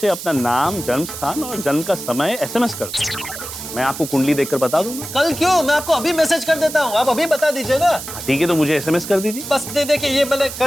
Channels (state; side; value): noise; right; hiss, 10 dB below the sound